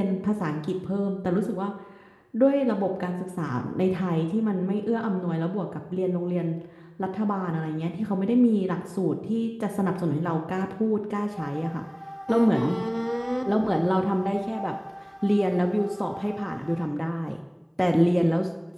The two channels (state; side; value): identical; both; correlation 1.00